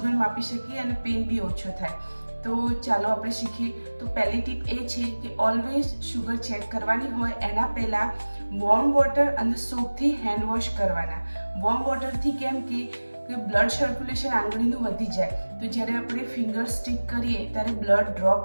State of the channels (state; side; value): inverted; both; correlation -1.00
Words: માપી શકીએ અને પેન બી ઓછો થાય. તો ચાલો આપણે શીખીએ. તો પહેલી ટીપ એ છે કે ઓલવેઝ શુગર ચેક કરવાની હોય એના પહેલાં વોર્મ વોટર અને સોપથી હેન્ડ વોશ કરવાના. વોર્મ વોટરથી કેમ કે બ્લડ સર્ક્યુલેશન આંગળીનું વધી જાય, તો જ્યારે આપણે ફિંગર સ્ટિક કરીએ ત્યારે બ્લડ